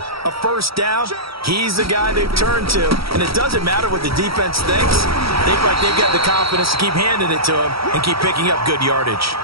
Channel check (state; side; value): late; left; 0.75 ms